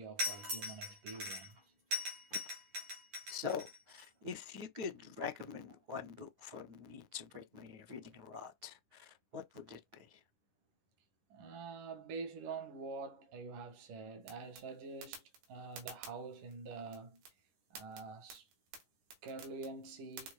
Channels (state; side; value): late; left; 10 ms